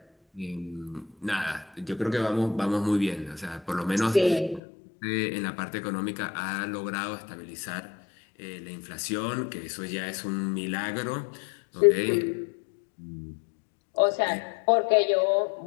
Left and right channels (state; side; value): drops out; right; at 4.6 s